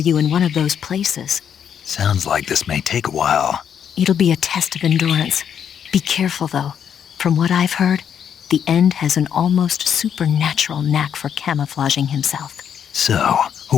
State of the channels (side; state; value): right; quieter; 8.4 dB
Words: in one of those places. Sounds like this may take a while. It'll be a test of endurance. Be careful, though. From what I've heard, the End has an almost supernatural knack for camouflaging himself. So,